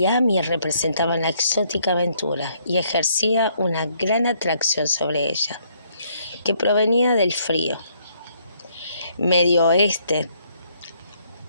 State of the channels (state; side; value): inverted; both; correlation -0.69